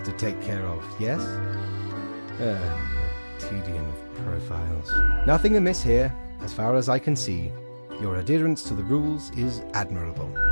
to take care of, yes? The tedium of profiles. Nothing amiss here, as far as I can see. Your adherence to the rules is admirable.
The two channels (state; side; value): inverted; both; correlation -1.00